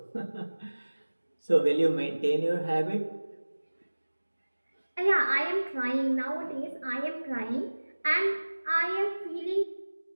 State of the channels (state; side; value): inverted; both; correlation -1.00